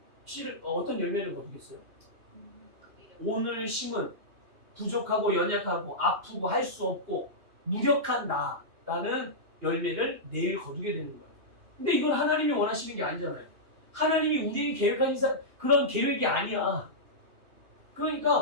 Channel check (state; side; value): late; left; 2.8 ms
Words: 씨를 어떤 열매를 거두겠어요? 오늘 심은 부족하고 연약하고 아프고 할 수 없고 무력한 나라는 열매를 내일 거두게 되는 거예요. 근데 이건 하나님이 원하시는 게 아니잖아요. 하나님이 우리에게 계획하신 그런 계획이 아니야.